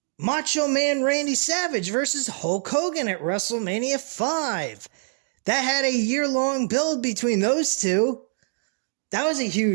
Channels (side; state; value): left; silent; digital silence